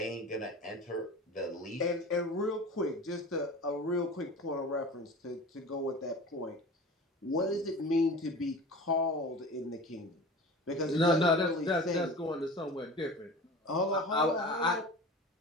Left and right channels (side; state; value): both; normal; correlation 0.36